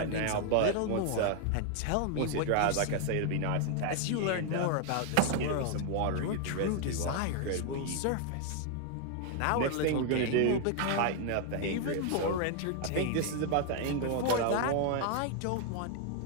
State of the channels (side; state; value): both; different; correlation 0.00